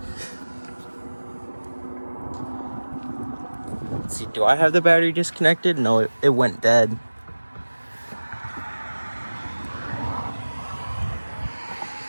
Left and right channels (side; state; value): both; inverted; correlation -1.00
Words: Let's see, do I have the battery disconnected? No, it went dead.